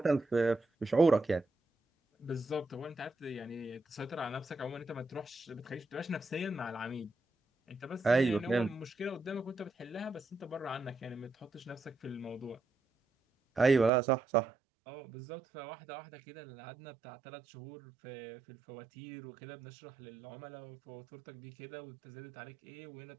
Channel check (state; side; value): drops out; left; at 13.9 s